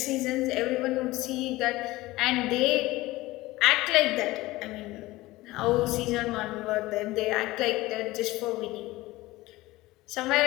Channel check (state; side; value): quieter; right; 18.9 dB